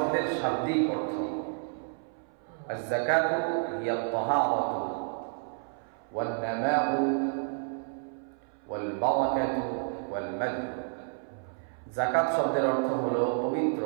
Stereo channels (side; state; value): left; silent; 58 dB below the other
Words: শাব্দিক অর্থ আয-যাকাতু হিয়া আত-তাহারাতু ওয়ান-নামাউ ওয়াল-বারাকাতু ওয়াল-মাদ। যাকাত শব্দের অর্থ হলো